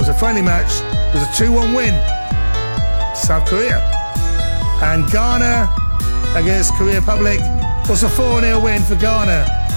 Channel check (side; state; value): both; inverted; correlation -1.00